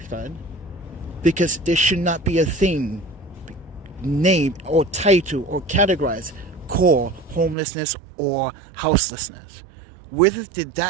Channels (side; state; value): left; drops out; at 7.6 s